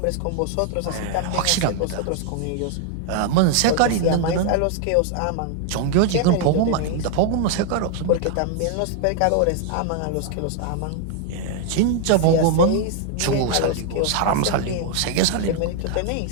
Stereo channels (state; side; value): different; both; correlation 0.00